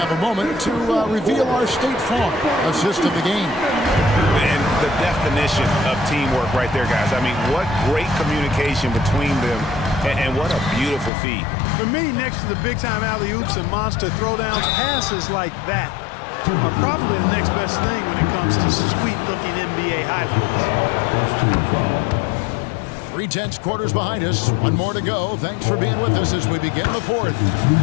a moment to reveal our State Farm assist of the game. And the definition of teamwork right there, guys. I mean, what great communication between them, and what a beautiful feed. For me, next to the big-time alley-oops and monster throwdowns, passes like that are probably the next best thing when it comes to sweet-looking NBA highlights. 3 tenths quarters behind us. One more to go. Thanks for being with us as we begin the fourth.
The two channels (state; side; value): drops out; right; at 11.1 s